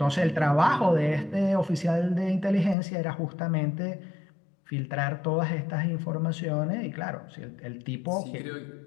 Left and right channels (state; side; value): drops out; right; at 2.8 s